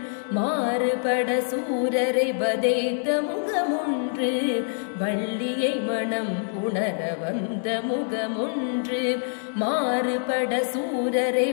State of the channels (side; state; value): right; silent; 61 dB below the other